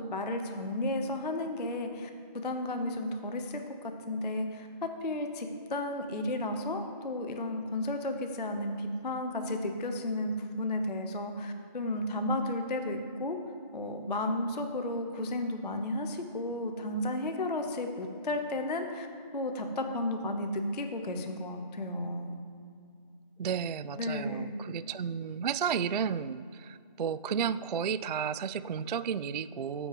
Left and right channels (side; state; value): both; inverted; correlation -0.33